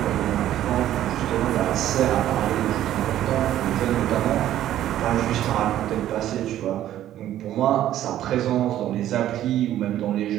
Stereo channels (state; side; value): quieter; left; 12.4 dB